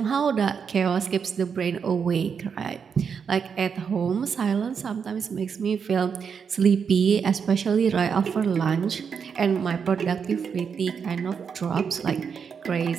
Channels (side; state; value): left; quieter; 6.5 dB